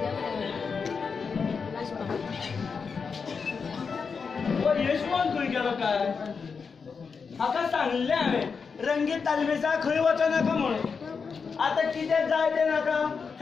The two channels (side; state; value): right; quieter; 5.5 dB